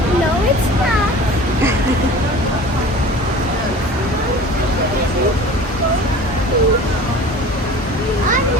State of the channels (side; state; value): both; normal; correlation 0.41